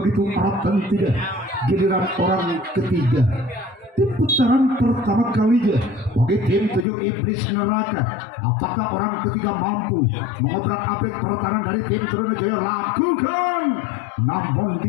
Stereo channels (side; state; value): right; drops out; at 6.9 s